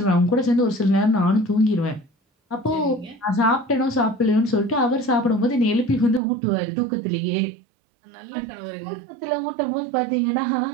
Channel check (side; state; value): left; drops out; at 6.2 s